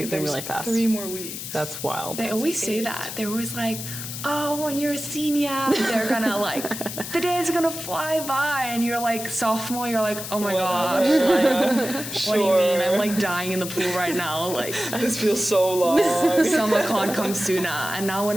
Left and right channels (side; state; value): left; noise; hiss, 8 dB below the sound